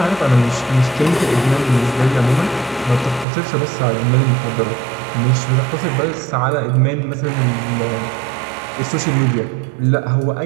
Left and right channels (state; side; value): drops out; left; at 3.2 s